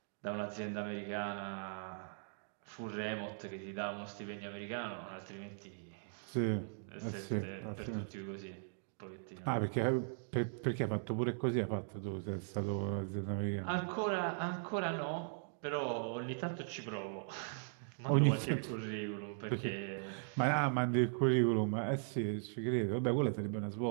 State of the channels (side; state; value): left; silent; digital silence